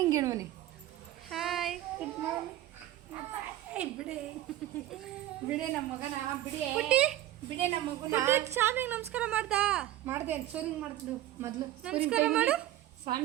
ಗಿಣ್ಮನಿ. ಹಾಯ್. Good morning. ಬಿಡಿ ಬಿಡಿ ನಮ್ಮ ಮಗನ ಬಿಡಿ ಪುಟ್ಟಿ ಬಿಡಿ ನಮ್ಮ ಮಗನ ಸ್ವಾಮಿಗೆ ನಮಸ್ಕಾರ ಮಾಡ್ದ? ಮಾಡ್ದೆ. ಸೂರಿಂಗ್ ಮಾಡ್ತಿದ್ದು ಮೊದಲು. ನಮಸ್ಕಾರ ಮಾಡು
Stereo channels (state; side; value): quieter; left; 14.1 dB